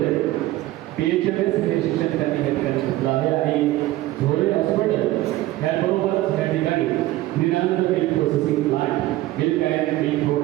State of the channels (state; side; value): quieter; left; 16.5 dB